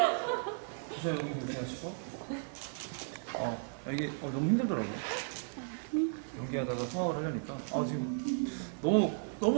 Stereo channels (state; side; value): silent; left; 54 dB below the other